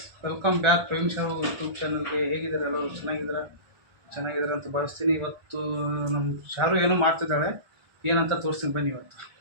welcome back Prem show YouTube ಚಾನಲ್ಗೆ. ಹೇಗಿದ್ದಾರೆ ಎಲ್ಲರೂ? ಚೆನ್ನಾಗಿದ್ದಾರೆ ಅಂತ ಭಾವಿಸ್ತೀನಿ. ಇವತ್ತು ನಮ್ಮ ಶಾರು ಏನೋ ಮಾಡ್ತಿದ್ದಾಳೆ, ಏನಂತ ತೋರಿಸ್ತೀನಿ ಬನ್ನಿ. ಇವತ್ತು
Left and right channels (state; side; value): late; left; 1.4 ms